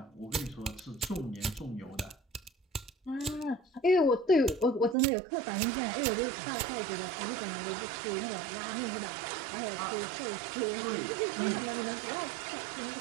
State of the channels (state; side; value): drops out; left; at 5.0 s